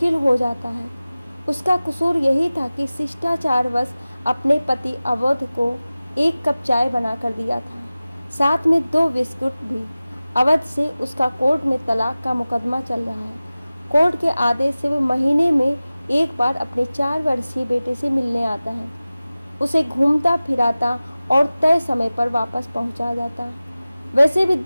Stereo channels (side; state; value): both; inverted; correlation -0.97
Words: हो जाता है। उसका कसूर यही था कि शिष्टाचारवश अपने पति अवध को 1 कप चाय बना कर दिया था, साथ में 2 बिस्कुट भी। अवध से उसका कोर्ट में तलाक का मुकदमा चल रहा है। कोर्ट के आदेश से वह महीने में एक बार अपने 4 वर्षीय बेटे से मिलने आता है। उसे घूमता फिराता और तय समय पर वापस पहुंचा जाता। वैसे भी